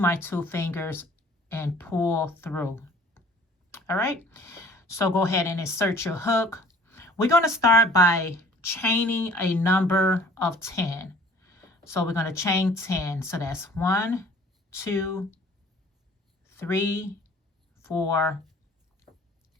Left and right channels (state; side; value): normal; both; correlation 0.52